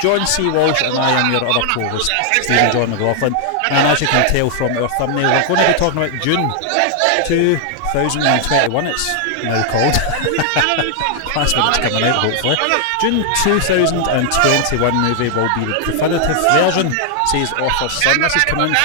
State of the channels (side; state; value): both; different; correlation 0.00